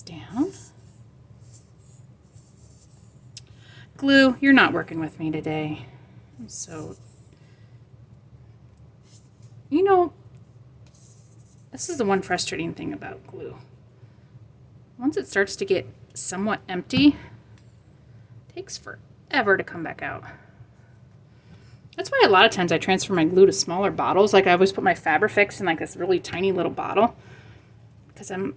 down. Glue, you're not working with me today. I'm so, you know, this is the one frustrating thing about glue. Once it starts to get somewhat empty, it takes forever to come back out. That's why a lot of times I transfer my glue to smaller bottles. Like I always put my Fabrifix in like this really tiny little bottle because I'm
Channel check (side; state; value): both; identical; correlation 1.00